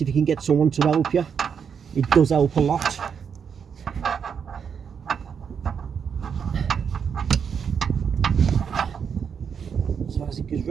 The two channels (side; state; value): left; quieter; 6.9 dB